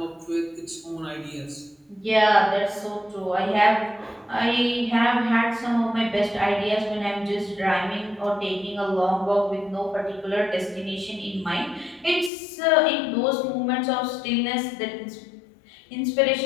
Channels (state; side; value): drops out; right; at 12.3 s